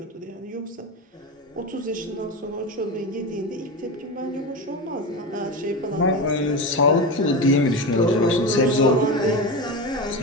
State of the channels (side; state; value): both; normal; correlation 0.21